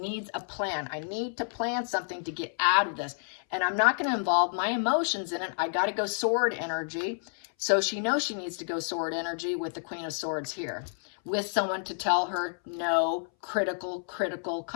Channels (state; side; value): silent; right; 58 dB below the other